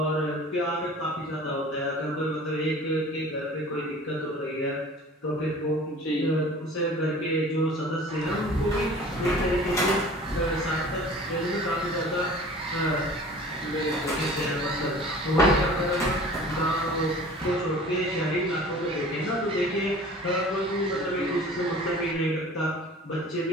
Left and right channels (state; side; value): normal; both; correlation 0.44